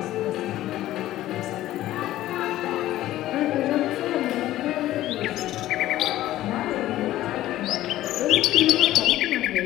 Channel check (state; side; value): quieter; right; 14.6 dB